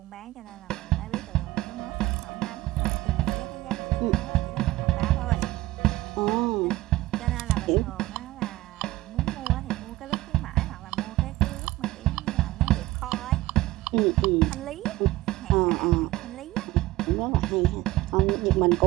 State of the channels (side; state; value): left; quieter; 17.7 dB